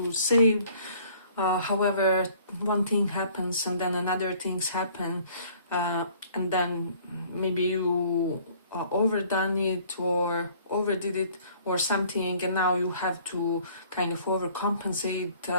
save, however one thing happens and then another things happen, and then maybe you overdone it or overdid it or something, and now you have to kind of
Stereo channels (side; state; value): both; inverted; correlation -0.56